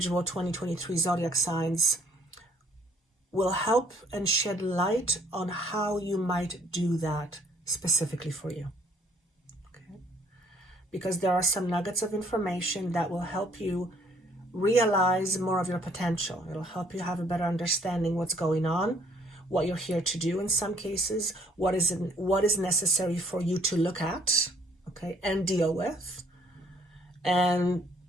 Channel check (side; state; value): both; normal; correlation 0.63